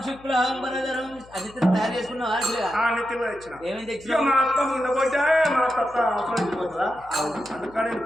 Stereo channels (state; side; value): noise; left; hum, 24 dB below the sound